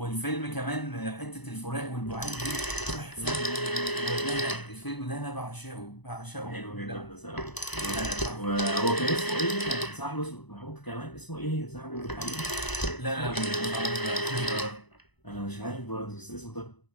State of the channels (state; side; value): late; right; 1.0 ms